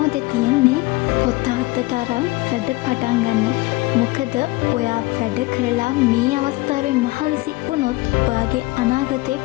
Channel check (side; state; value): right; quieter; 21.5 dB